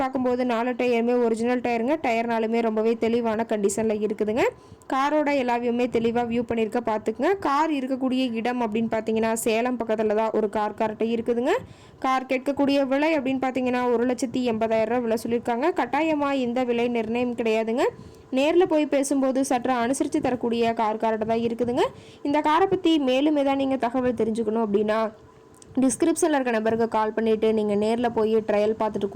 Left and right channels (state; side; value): identical; both; correlation 1.00